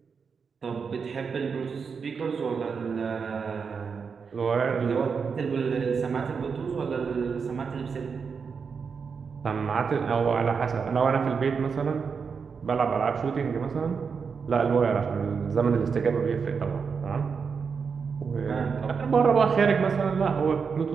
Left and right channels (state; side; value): quieter; left; 5.8 dB